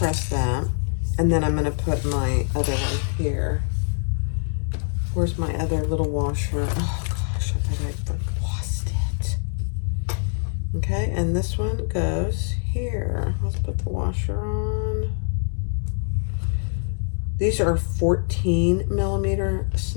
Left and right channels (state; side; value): silent; right; digital silence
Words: that. And then I'm going to put my other one here. Where's my other little washer? Oh gosh, I bet I lost it. Okay, and this one goes here. Let's put the washer on. These are 14mm